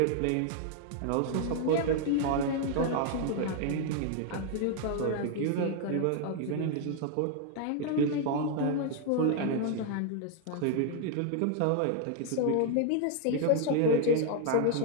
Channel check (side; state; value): both; different; correlation 0.00